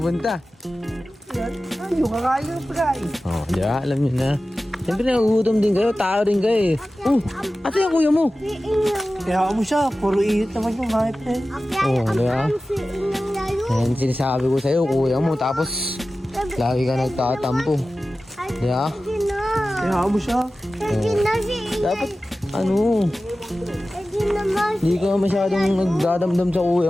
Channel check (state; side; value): normal; both; correlation 0.95